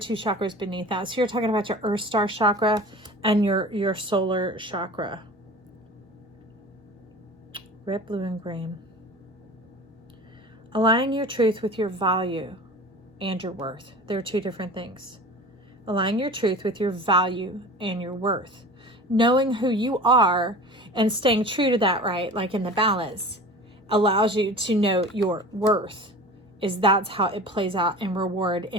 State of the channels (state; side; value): normal; both; correlation 0.38